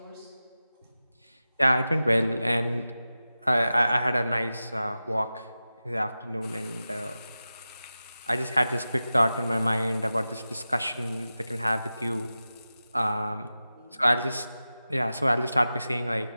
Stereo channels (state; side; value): inverted; both; correlation -0.94